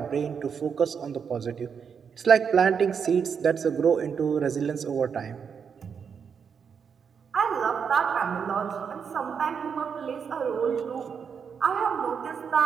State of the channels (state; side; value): quieter; left; 6.7 dB